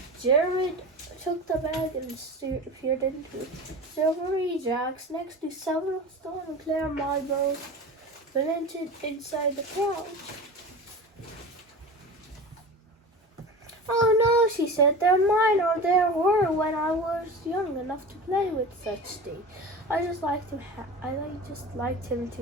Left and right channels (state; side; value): normal; both; correlation 0.32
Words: Jared took the bag and peered into it. Silvery jacks next to several stone and clear marbles blended inside the pouch. Oh no, she said, they're mine, or there were when I was young enough to play with such things. I just liked him